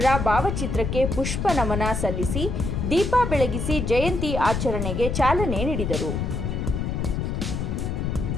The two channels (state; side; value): noise; left; rumble, 2 dB below the sound